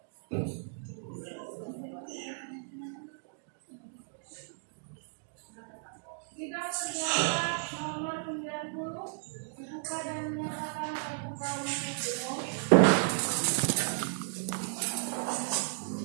Sidang perdana nomor 90 dibuka dan menyatakan terbuka untuk umum.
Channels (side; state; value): left; silent; digital silence